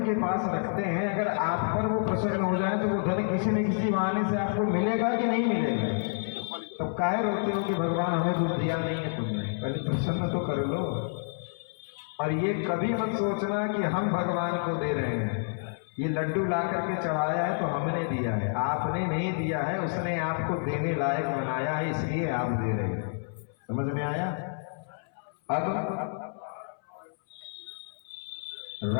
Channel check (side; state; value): right; silent; 59 dB below the other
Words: के पास रखते हैं, अगर आप पर वो प्रसन्न हो जाए तो वो धन किसी न किसी बहाने से आपको मिलेगा कि नहीं मिलेगा? तब काहे रोते हो कि भगवान हमें कुछ दिया नहीं है तुमने? कभी प्रसन्न तो कर लो। और ये कभी मत सोचना कि हम भगवान को दे रहे हैं, ये लड्डू ला करके चढ़ाया है तो हमने दिया है, आपने नहीं दिया है, उसने आपको देने लायक बनाया है, इसलिए आप दे रहे हैं। समझ में आया? अब